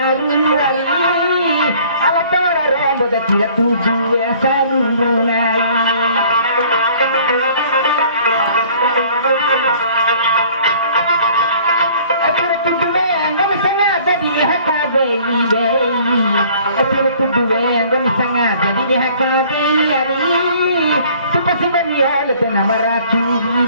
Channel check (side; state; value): both; inverted; correlation -0.54